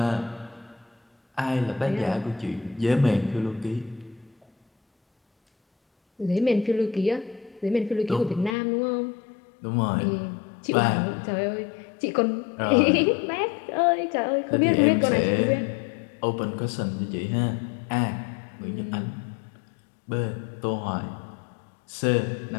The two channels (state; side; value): drops out; right; at 8.6 s